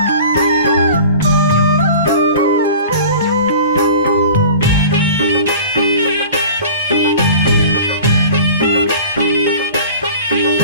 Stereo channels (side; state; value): both; inverted; correlation -0.40